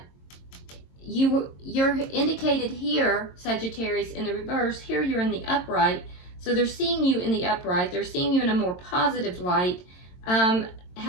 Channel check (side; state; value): right; late; 22 ms